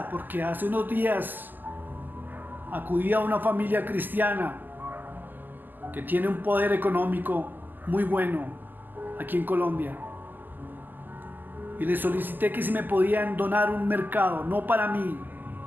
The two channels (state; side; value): late; left; 0.088 ms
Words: porque hace unos días acudí a una familia cristiana que tiene un poder económico muy bueno aquí en Colombia. Y les solicité que si me podían donar un mercado, no para mí,